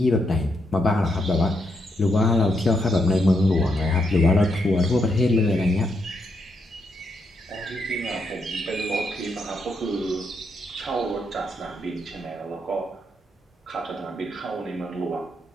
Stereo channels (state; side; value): normal; both; correlation 0.79